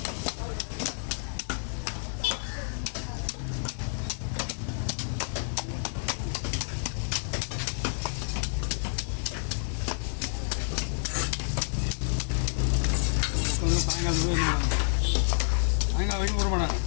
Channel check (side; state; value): right; silent; digital silence